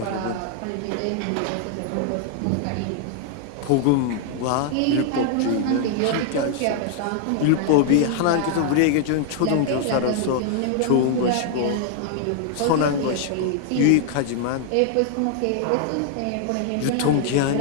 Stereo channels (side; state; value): both; different; correlation 0.00